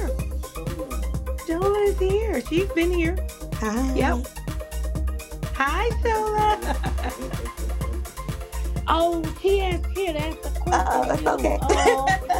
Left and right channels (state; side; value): identical; both; correlation 1.00